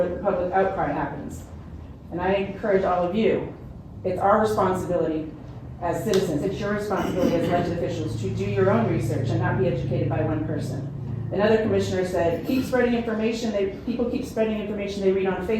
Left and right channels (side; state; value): both; identical; correlation 1.00